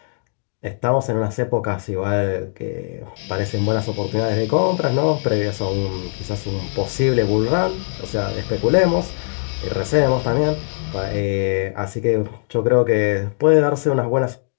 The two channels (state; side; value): silent; right; digital silence